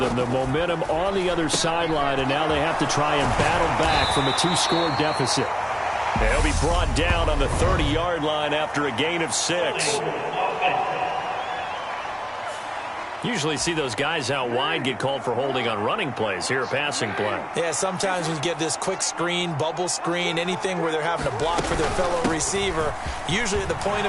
The momentum on the other sideline, and now they have to try and battle back from a 2-score deficit. They'll be brought down on the 30-yard line after a gain of 6. Usually see those guys out wide get called for holding on running plays. Here, a passing play. Yeah, sometimes we get this quick screen, bubble screen, anything where they're having to block for their fellow receiver, usually at the point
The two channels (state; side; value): identical; both; correlation 1.00